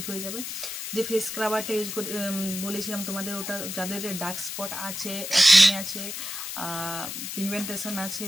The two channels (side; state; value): left; noise; hiss, 6 dB below the sound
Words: হয়ে যাবে। যে ফেস স্ক্রাবারটা ইউজ করে বলেছিলাম তোমাদের, ওটা যাদের ডার্ক স্পট আছে, অ্যাকনে আছে, পিগমেন্টেশন আছে,